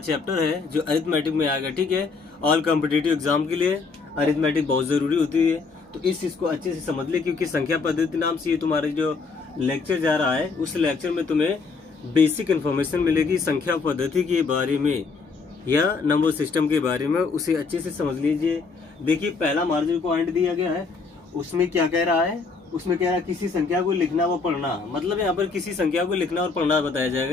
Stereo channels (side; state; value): right; quieter; 4.6 dB